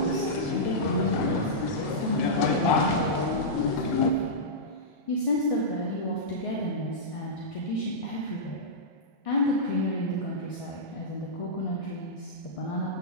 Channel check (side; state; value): right; late; 1.9 ms